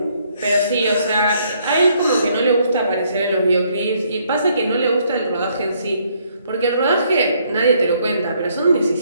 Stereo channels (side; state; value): both; inverted; correlation -0.69